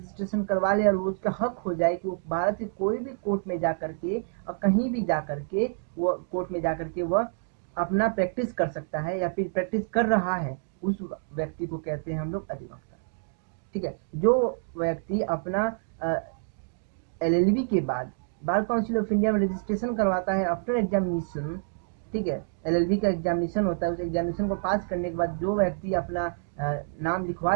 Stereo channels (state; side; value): silent; left; digital silence